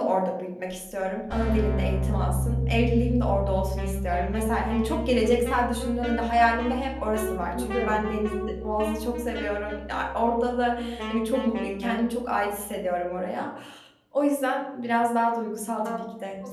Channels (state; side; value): identical; both; correlation 1.00